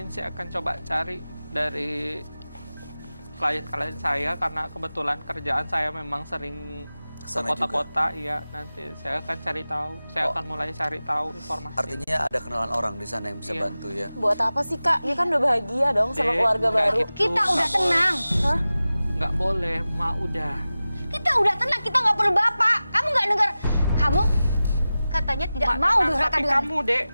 saya akan coba cari dari klien-klien saya karena kebetulan kerjaan saya memang sering ke Kesana juga. kota-kota. Iya, nanti saya akan cari tahu. Saya akan mulai cari tahu informasi. Artinya ada kenalan orang di sana yang bisa Iya. bantu ya. Buat apa sih Kak? Dia kan udah bahagia dong sama Dek, keluarga nggak baru. gitu. Kita udah Nggak tenang. Hah? Nggak boleh, Mak udah. Kita udah tenang, kita nggak perlu bapak. Kamu nggak dengar? Kamu katanya tidak Mak, mau tenang, durhaka tapi dengan kamu, Dek,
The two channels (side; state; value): both; inverted; correlation -0.96